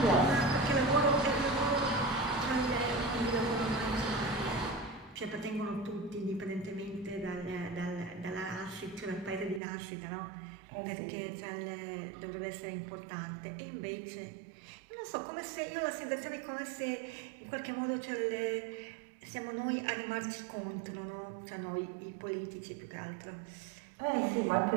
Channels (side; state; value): left; drops out; at 9.6 s